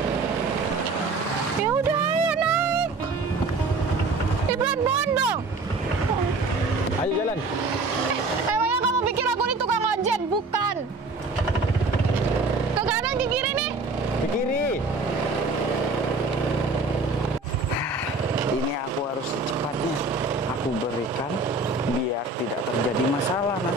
Ya udah, ayo naik. Ibrat bondong. Ayo jalan. Emangnya kamu pikir aku ini tukang ojek? Bukan. Ke kanan, ke kiri nih. Ke kiri. Ini aku harus secepatnya aku berikan biar tidak terjadi masalah.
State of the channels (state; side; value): quieter; left; 3.4 dB